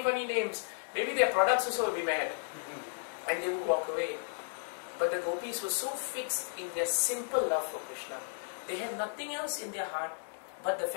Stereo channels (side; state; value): right; silent; digital silence